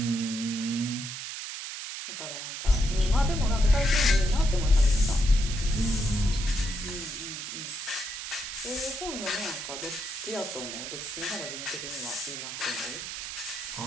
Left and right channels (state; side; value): noise; right; hiss, 7 dB below the sound